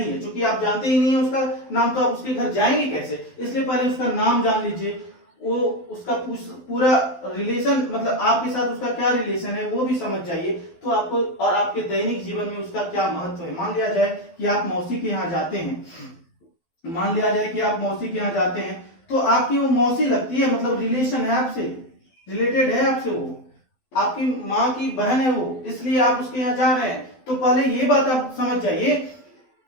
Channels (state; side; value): late; right; 12 ms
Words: है। क्योंकि आप जानते ही नहीं है उसका नाम तो आप उसके घर जाएंगे कैसे, इसलिए पहले उसका नाम जान लीजिए, वो उसका पूरा रिलेशन मतलब आपके साथ उसका क्या रिलेशन है वो भी समझ जाइए तो आपको, और आपके दैनिक जीवन में उसका क्या महत्व है। मान लिया जाए कि आप मौसी के यहाँ जाते हैं, मान लिया जाए कि आप मौसी के यहाँ जाते हैं तो आपकी वो मौसी लगती है, मतलब रिलेशन है आपसे, रिलेटेड है आपसे, वो आपकी माँ की बहन है वो, इसलिए आप उसके यहाँ जा रहे हैं। तो पहले ये बात आप समझ जाइए